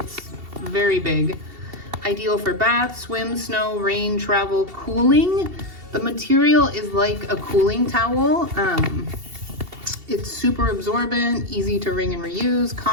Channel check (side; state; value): left; late; 2.7 ms